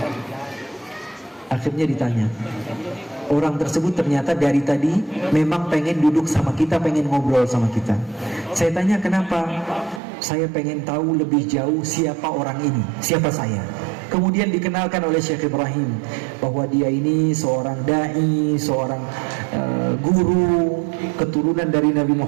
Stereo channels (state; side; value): drops out; left; at 10.0 s